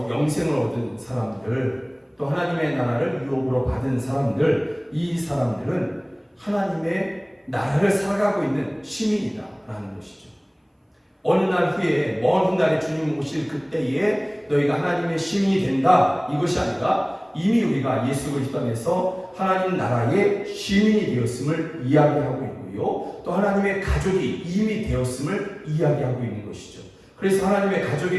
영생을 얻은 사람들, 또 하나님의 나라를 유업으로 받은 사람들, 이 사람들은 하나님의 나라를 살아가고 있는 시민이다라는 것이죠. 어느 날 후에, 먼 훗날에 주님 오실 그때에 너희가 하나님의 시민이 된다, 이것이 아니라 이미 우리가 예수 그리스도 안에서 하나님 나라의 시민이 되었음을 이야기하고 있고요, 또 하나님의 가족이 이미 되었음을 이야기하고 있는 것이죠. 그래서 하나님의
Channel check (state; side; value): identical; both; correlation 1.00